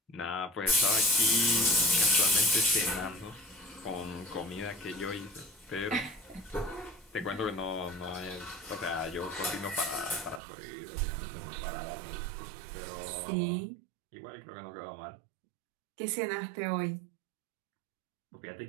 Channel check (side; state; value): left; drops out; at 10.4 s